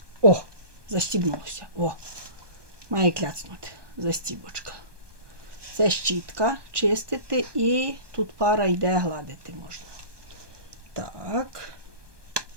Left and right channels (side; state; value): left; late; 1.2 ms